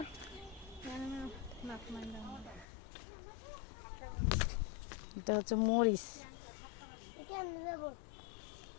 এটা হচ্ছে মরিচ। কেমনে যাব?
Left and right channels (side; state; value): right; drops out; at 2.7 s